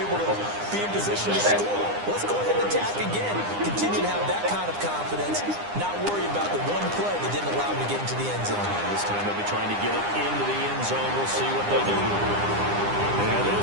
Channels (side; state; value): left; late; 9.9 ms